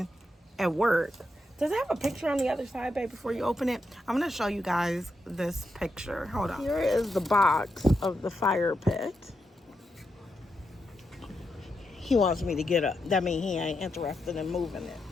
at work. Does it have a picture on the other side, babe, before you open it? I'm going to show you guys this picture. Hold on. Here is the box of the fire pit. He wants me to get up. That means he ain't interested in moving it.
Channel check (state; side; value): normal; both; correlation 0.84